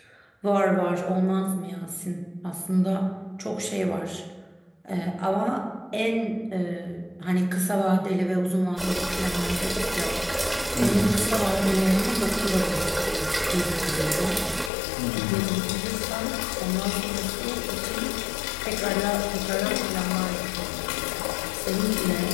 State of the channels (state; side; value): drops out; right; at 14.7 s